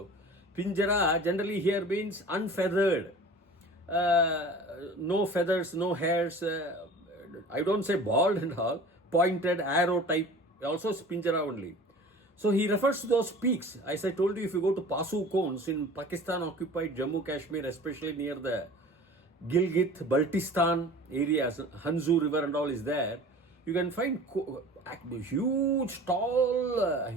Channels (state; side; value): normal; both; correlation 0.42